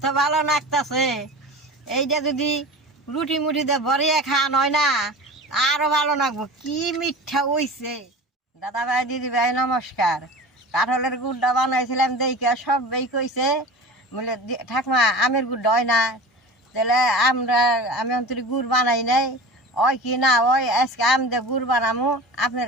ভালো লাগতেছে। এইটা যদি রুটি মুটিতে ভরিয়ে খাওয়ানো হয় না আরো ভালো লাগবো। কি মিঠা হইছে। দাদা ভাই দিদি ভাই নমস্কার। কাঁঠালের গুড়টা বানাইছিলাম দেখে সবাই কইছে বলে ঠাকমা আমের গুড়টা হয় না, তাহলে আমি অন্তরি গুড় বানাই নাই ওই কি না ওই আজকে আম দিয়ে গুড় বানামো।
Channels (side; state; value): both; normal; correlation 0.34